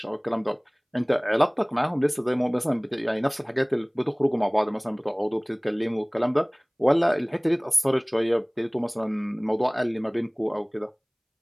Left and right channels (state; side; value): identical; both; correlation 1.00